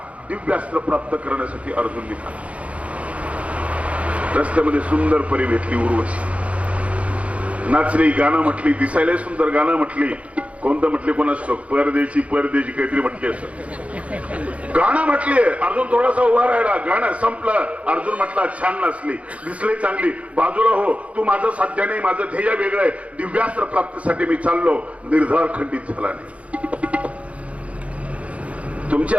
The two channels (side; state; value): left; late; 0.064 ms